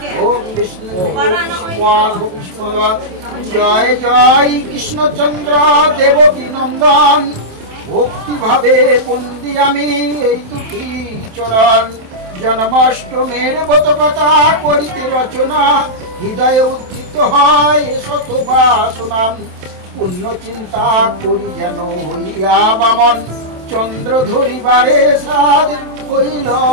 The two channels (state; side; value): late; left; 27 ms